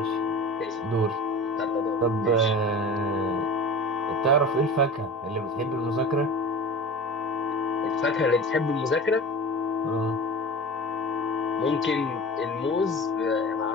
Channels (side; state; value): both; normal; correlation 0.35